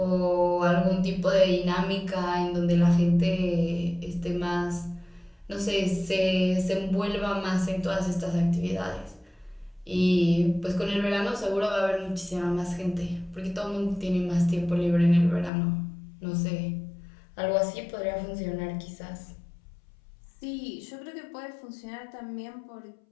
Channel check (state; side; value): drops out; right; at 15.5 s